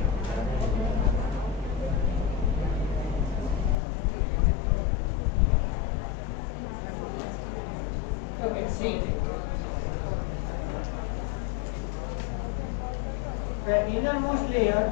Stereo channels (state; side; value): drops out; right; at 3.8 s